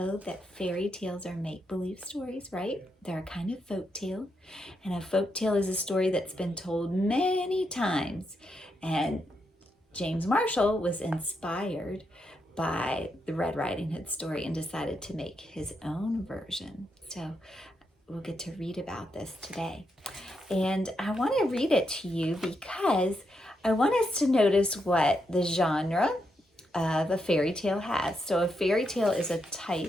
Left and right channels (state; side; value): normal; both; correlation 0.82